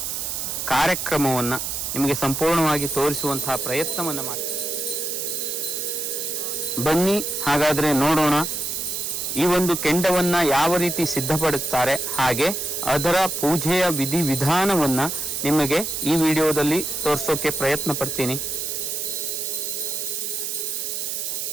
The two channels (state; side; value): noise; right; hiss, 3 dB below the sound